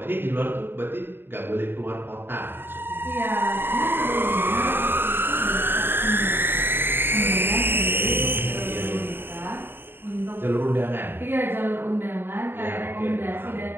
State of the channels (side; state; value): left; late; 0.10 ms